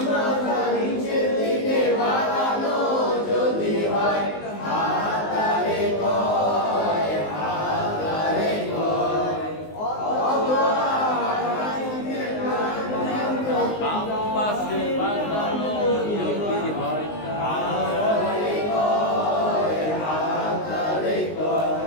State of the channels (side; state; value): right; late; 19 ms